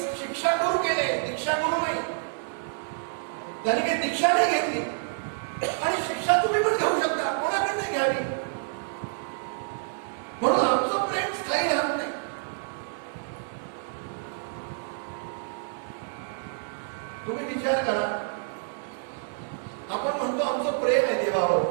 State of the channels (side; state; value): left; silent; 59 dB below the other